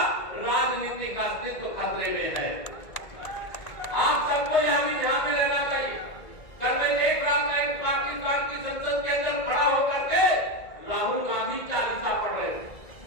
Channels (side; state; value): right; late; 1.5 ms